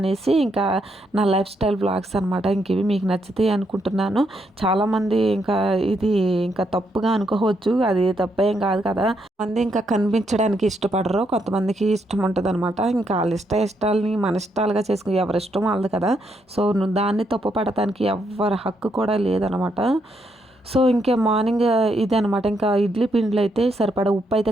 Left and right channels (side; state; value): both; normal; correlation 0.77